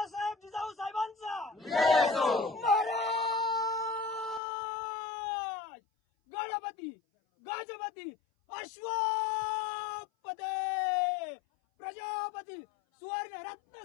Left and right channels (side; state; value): right; drops out; at 4.4 s